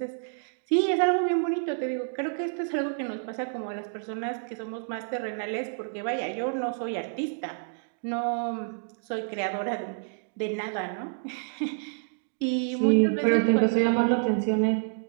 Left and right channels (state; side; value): silent; left; digital silence